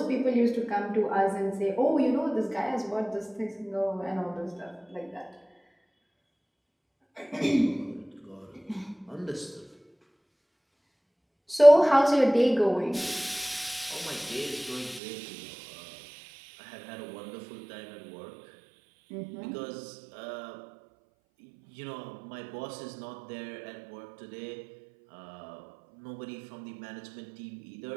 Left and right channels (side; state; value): left; drops out; at 15.0 s